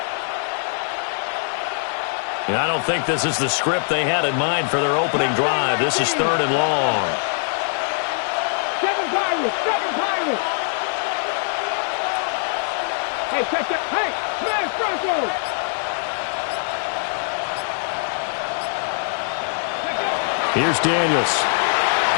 And I don't think this is the script they had in mind for their opening drive. This is 3rd and long. 7 Pirates! Hey, check that. Hey, smash Broncos! Here's Daniels.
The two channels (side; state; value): right; silent; digital silence